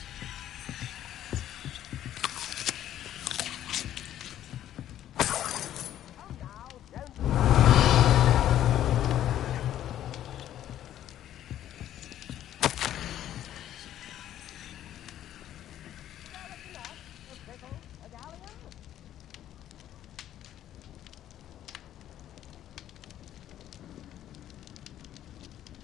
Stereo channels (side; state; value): right; quieter; 11.8 dB